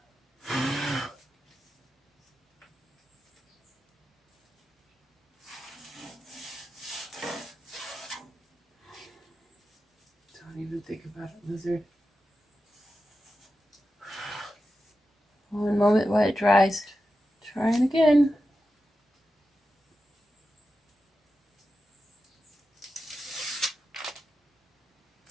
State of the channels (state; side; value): normal; both; correlation 0.91